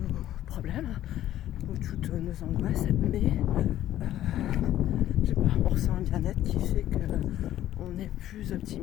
problèmes ou toutes nos angoisses, mais on ressent un bien-être qui fait qu'on est plus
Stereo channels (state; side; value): quieter; right; 12.8 dB